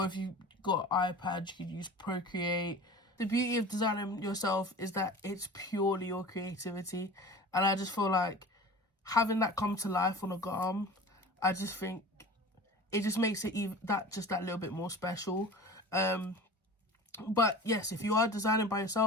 if you've got an iPad, you could use Procreate. The beauty of designing yourself is that it's purely your creativity, and I just feel like having that come to life on a garm, I just think it just makes it that little bit more special. But yes, if you are designing by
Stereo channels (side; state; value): both; normal; correlation 0.38